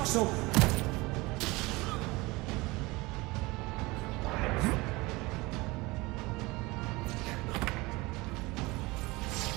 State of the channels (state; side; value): quieter; left; 22.7 dB